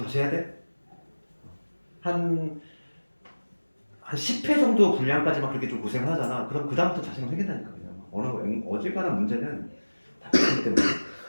다시 해야 돼? 한 10회 정도 분량까지만 그렇게 좀 고생을 하잖아. 그럼 그 다음부터 자신감 생긴다니까. 그냥 어지간한 문제는 다 틀리기 때문에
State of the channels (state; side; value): inverted; both; correlation -1.00